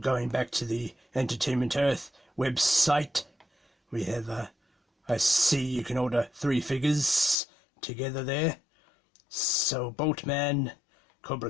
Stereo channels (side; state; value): right; drops out; at 7.4 s